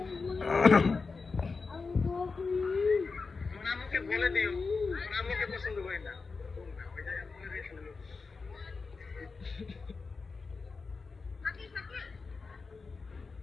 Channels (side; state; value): right; quieter; 4.4 dB